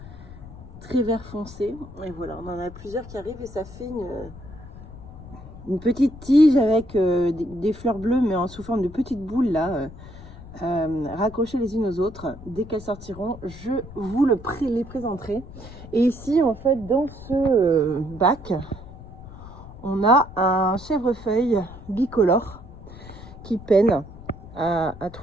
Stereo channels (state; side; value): noise; left; rumble, 16 dB below the sound